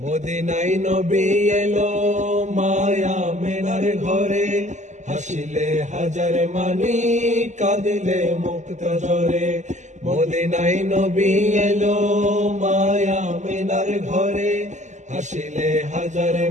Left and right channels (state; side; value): late; left; 0.34 ms